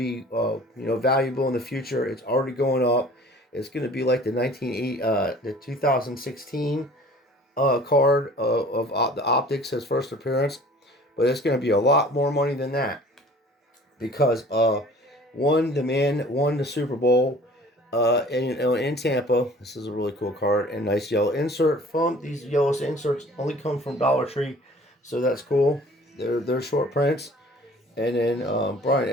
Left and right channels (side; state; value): both; normal; correlation 0.48